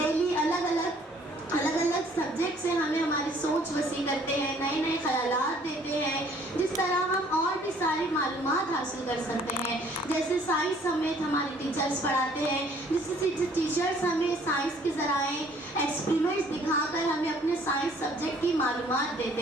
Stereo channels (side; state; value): both; normal; correlation 0.58